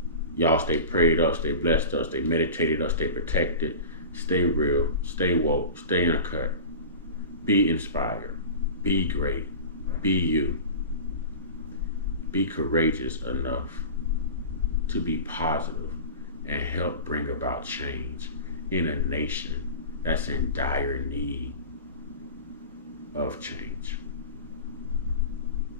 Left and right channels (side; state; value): both; inverted; correlation -0.33